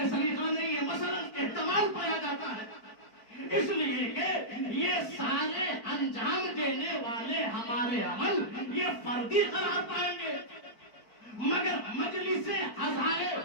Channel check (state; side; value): late; right; 4.5 ms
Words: सलीका नहीं है, मसलन इस्तेमाल पाया जाता है। इसलिए कि ये सारे अंजाम देने वाले हमारे अमल ये फर्दी करार पाएंगे, मगर मजलिस आज़ाए